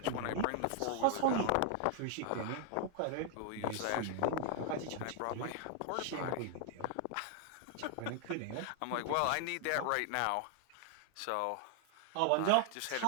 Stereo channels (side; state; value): both; different; correlation 0.00